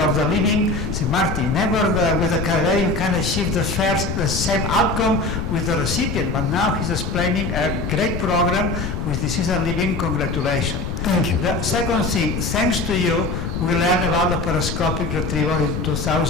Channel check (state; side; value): noise; left; rumble, 3 dB below the sound